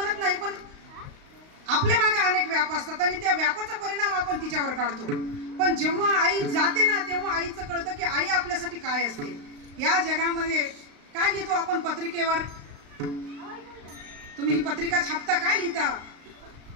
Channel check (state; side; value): late; left; 35 ms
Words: नाही, पण आपल्या मागे अनेक व्याप असतात आणि त्या व्यापाचा परिणाम आपण तिच्यावर काढतो. पण जेव्हा आई जाते ना तेव्हा आईचं कळतं की आई आपल्यासाठी काय असते. या जगामध्ये काय लिहितो आपण पत्रिकेवर? तुम्ही ही पत्रिका छापता, काय लिहिता